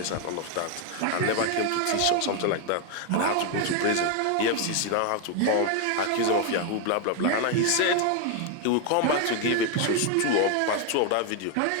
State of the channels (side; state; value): both; different; correlation 0.01